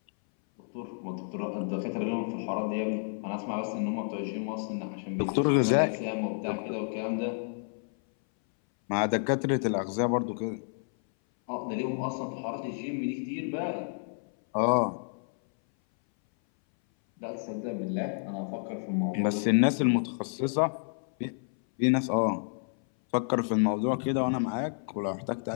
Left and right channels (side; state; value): right; silent; 58 dB below the other